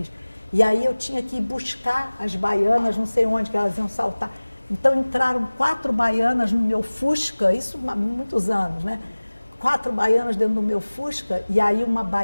E aí eu tinha que ir buscar as baianas, não sei onde que elas iam saltar. Então entraram 4 baianas no meu Fusca, isso há muitos anos, né? 4 baianas dentro do meu Fusca, e aí uma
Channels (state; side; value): inverted; both; correlation -1.00